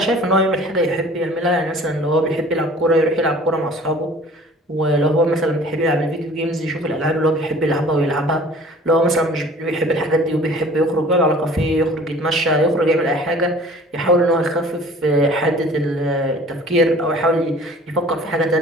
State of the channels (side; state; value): both; normal; correlation 0.48